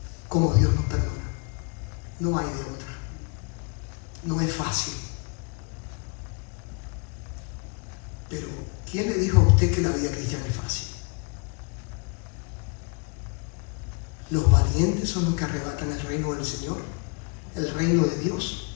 como Dios nos perdona. No hay de otra. No es fácil. Pero ¿quién le dijo a usted que la vida cristiana es fácil? Los valientes son los que arrebatan el reino del Señor, el reino de Dios.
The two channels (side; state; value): right; quieter; 34.4 dB